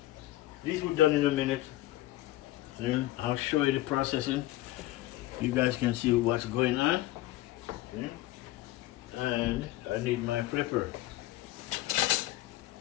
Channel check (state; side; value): quieter; right; 16.6 dB